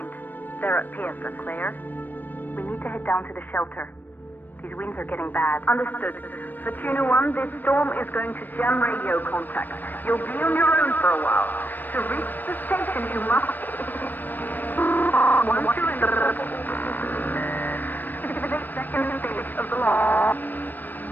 they're at Pearson. Claire, we need to head down to the shelter. These winds are getting bad. Understood. Fortuna 1, this storm is going to jam radio contact. You'll be on your own for a while. To reach the station, you must... Once you're in the second stage of the launch,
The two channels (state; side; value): late; right; 0.089 ms